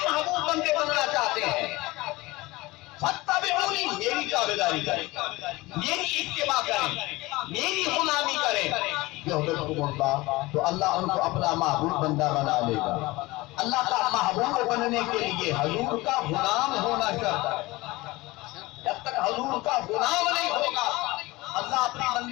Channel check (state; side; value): quieter; right; 21.0 dB